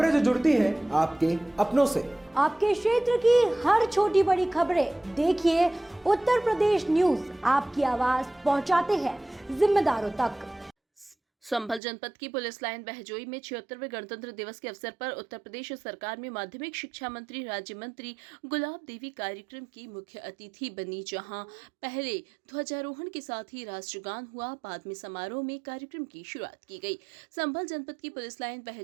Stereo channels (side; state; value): left; drops out; at 11.8 s